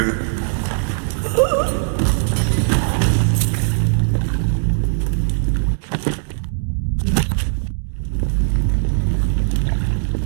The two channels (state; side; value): silent; left; digital silence